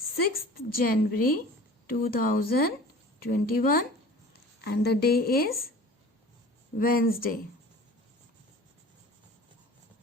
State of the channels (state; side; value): normal; both; correlation 0.42